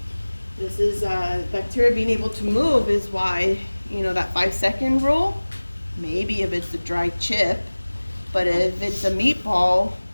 This is bacteria being able to move is why, that 5-second rule, maybe if it's a dry chip, but if it's a meatball,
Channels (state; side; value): inverted; both; correlation -1.00